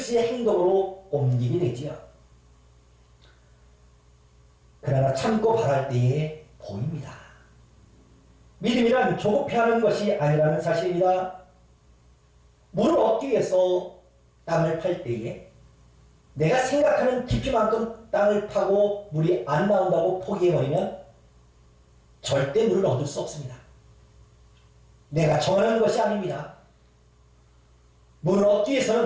행동으로 옮기게 되지요. 그러나 참고 바랄 때에 보입니다. 믿음이란 조급해하는 것이 아니라는 사실입니다. 물을 얻기 위해서 땅을 팔 때에 내가 생각하는 깊이만큼 땅을 파고 물이 안 나온다고 포기해버리면 절대 물을 얻을 수 없습니다. 내가 정하는 것이 아닙니다. 물을 얻기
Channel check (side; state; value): both; identical; correlation 1.00